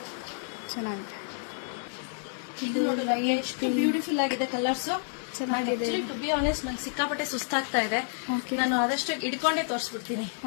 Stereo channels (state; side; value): silent; right; digital silence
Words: ಚೆನ್ನಾಗಿದೆ. ಇದು ಎಷ್ಟು ಬ್ಯೂಟಿಫುಲ್ ಆಗಿದೆ ಕಲರ್ಸ್, ಚೆನ್ನಾಗಿದೆ. ಟು ಬಿ ಆನೆಸ್ಟ್ ನಂಗೆ ಸಿಕ್ಕಾಪಟ್ಟೆ ಸುಸ್ತಾಗ್ತಾ ಇದೆ. ನಾನು ಆದಷ್ಟು ಇಡ್ಕೊಂಡೇ ತೋರಿಸ್ಬಿಡ್ತೀನಿ.